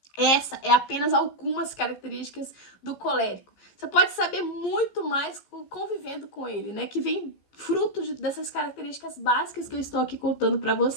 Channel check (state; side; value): late; right; 15 ms